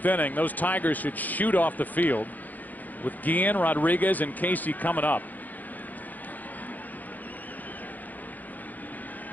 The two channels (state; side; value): late; right; 0.083 ms